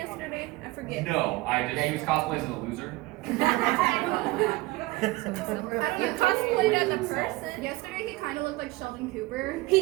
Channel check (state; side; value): quieter; left; 20.7 dB